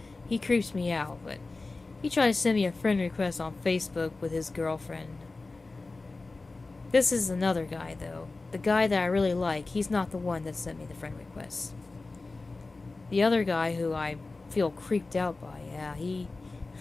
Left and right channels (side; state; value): right; quieter; 3.5 dB